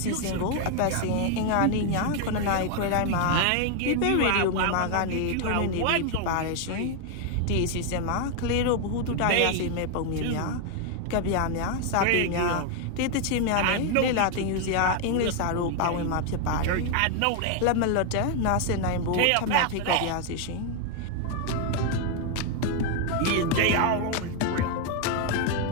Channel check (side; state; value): both; different; correlation 0.01